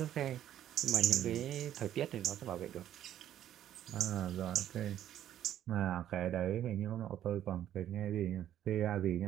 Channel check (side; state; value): left; quieter; 11.4 dB